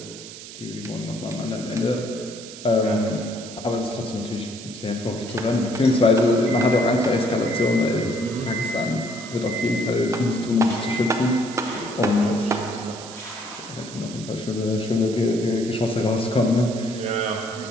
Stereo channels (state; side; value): noise; right; hiss, 14 dB below the sound